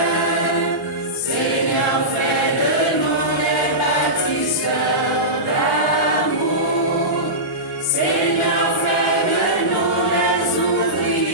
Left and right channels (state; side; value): normal; both; correlation -0.17